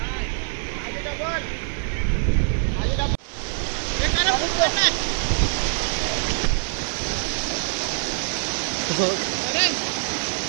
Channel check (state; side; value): silent; left; 63 dB below the other